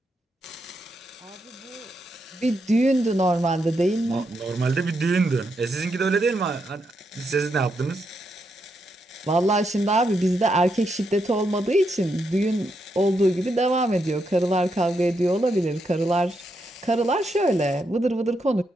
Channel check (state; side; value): normal; both; correlation 0.81